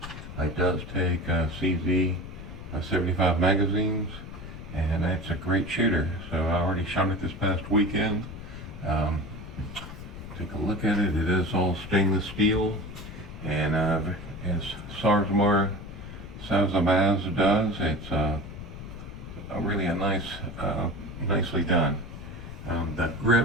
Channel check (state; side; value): noise; left; rumble, 12 dB below the sound